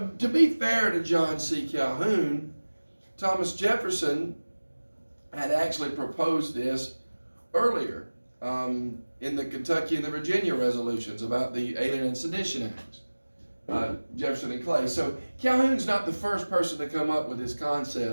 to be fair to John C. Calhoun, Thomas Jefferson had actually proposed this earlier in the Kentucky and the Virginia resolutions about the Alien and Sedition Acts, Jefferson and Clay. So Calhoun's not the first person to come up with this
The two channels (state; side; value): inverted; both; correlation -1.00